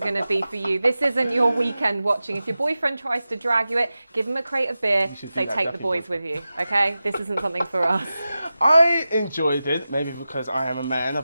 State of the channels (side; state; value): both; inverted; correlation -0.94